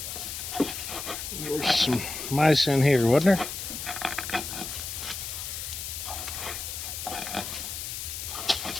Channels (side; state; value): left; noise; hiss, 6 dB below the sound